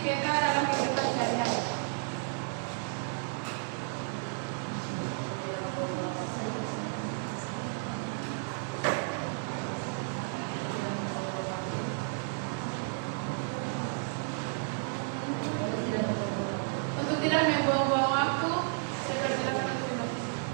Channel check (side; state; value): left; silent; 56 dB below the other